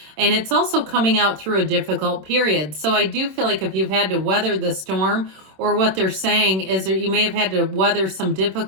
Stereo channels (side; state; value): left; late; 26 ms